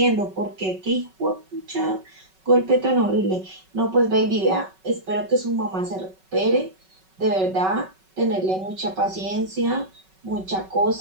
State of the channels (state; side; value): late; left; 5.3 ms